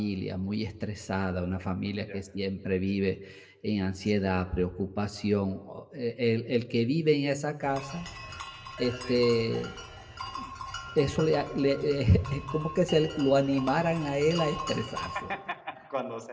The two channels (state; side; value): identical; both; correlation 1.00